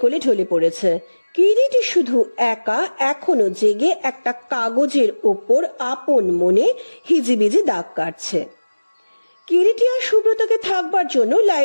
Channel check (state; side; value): inverted; both; correlation -1.00